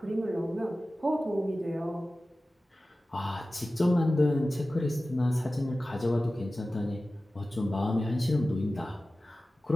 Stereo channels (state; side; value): normal; both; correlation 0.96